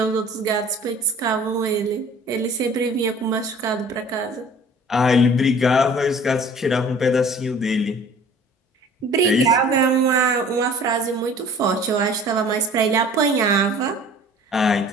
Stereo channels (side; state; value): both; normal; correlation 0.48